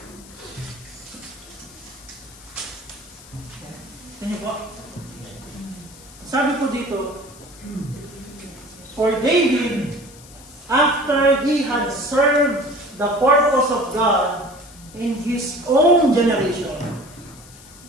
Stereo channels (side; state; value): left; noise; hiss, 20 dB below the sound